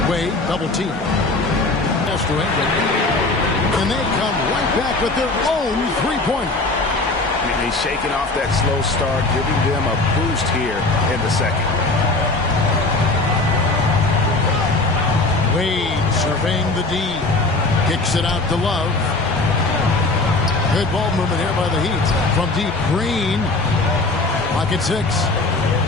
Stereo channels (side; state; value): right; quieter; 3.2 dB